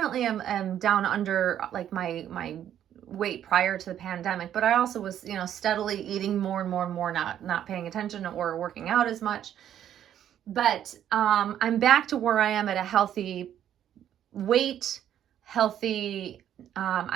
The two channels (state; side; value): quieter; left; 10.5 dB